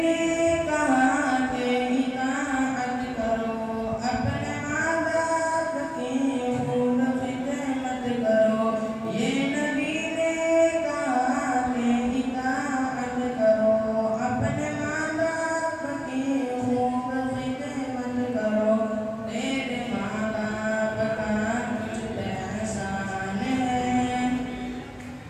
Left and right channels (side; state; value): both; identical; correlation 1.00